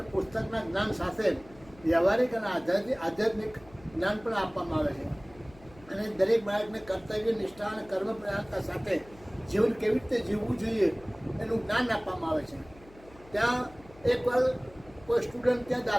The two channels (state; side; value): noise; left; hum, 23 dB below the sound